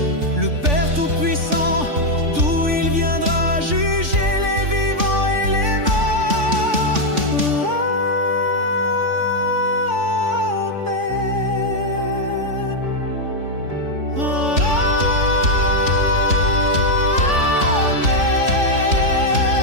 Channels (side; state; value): left; late; 3.5 ms